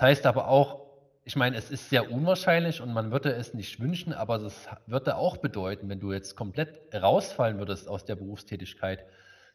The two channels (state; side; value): identical; both; correlation 1.00